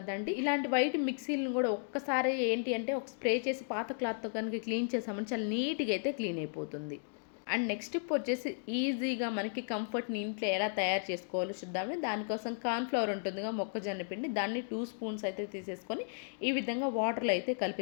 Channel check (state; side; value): silent; right; digital silence